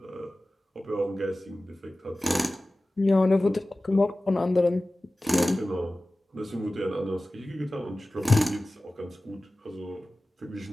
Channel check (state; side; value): normal; both; correlation 0.96